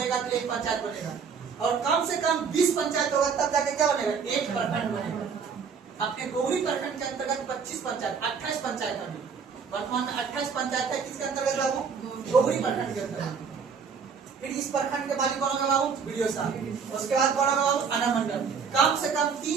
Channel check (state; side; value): quieter; left; 6.0 dB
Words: तो एक पंचायत बनेगा। और कम से कम 20 पंचायत होगा तब जाके क्या बनेगा, एक प्रखंड बनेगा। अपने गोगरी प्रखंड के अंतर्गत 25 पंचायत, 28 पंचायत अभी वर्तमान में 28 पंचायत है। किसके अंतर्गत बाबू, गोगरी प्रखंड के अंतर्गत। फिर इस प्रखंड के मालिक कौन होगा बाबू, वीडियो साहब। उसके बाद कौन होगा बाबू, अनुमंडल। कम से कम